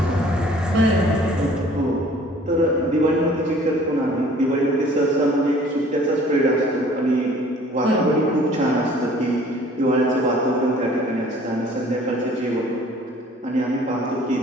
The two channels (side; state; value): both; normal; correlation 0.53